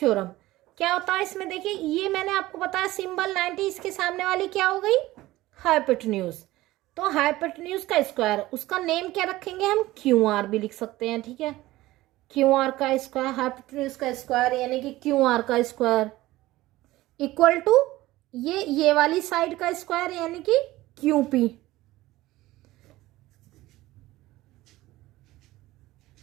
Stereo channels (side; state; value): left; quieter; 17.4 dB